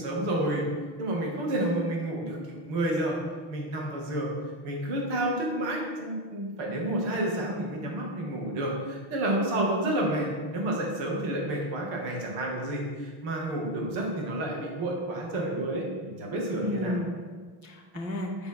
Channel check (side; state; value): left; late; 6.1 ms